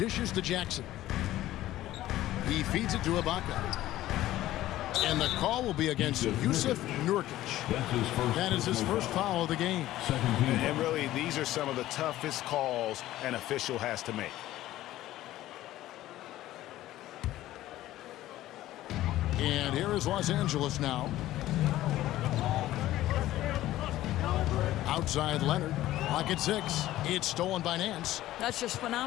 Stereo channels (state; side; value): quieter; right; 14.8 dB